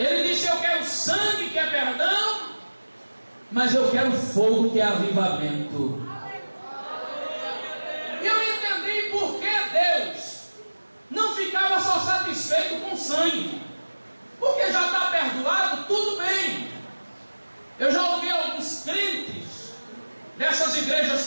disse: eu quero sangue, que é perdão, mas eu quero fogo, que é avivamento. E eu entendi por que Deus não ficava só satisfeito com sangue. Porque já está perdoado, tudo bem. Eu já ouvi alguns crentes dessas igrejas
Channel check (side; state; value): both; inverted; correlation -1.00